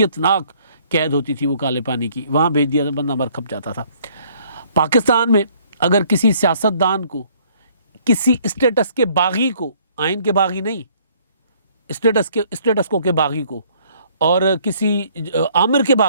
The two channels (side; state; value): both; inverted; correlation -0.61